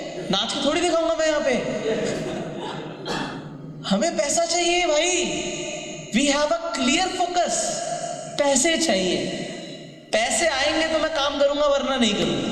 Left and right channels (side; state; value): both; identical; correlation 1.00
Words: नाच के थोड़ी दिखाऊंगा मैं यहाँ पे। हमें पैसा चाहिए भाई। We have a clear focus. पैसे चाहिए, पैसे आएंगे तो मैं काम करूंगा वरना नहीं करूंगा।